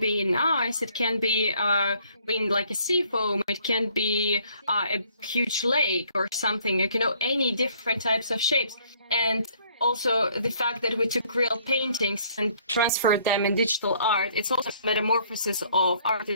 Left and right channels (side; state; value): both; inverted; correlation -0.63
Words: in ice, it can be in like a sea foam, it can be a huge lake or something, like, any different types of shapes. And also the fact that we took real paintings and transferred them in digital art, it's also a metamorphosis of art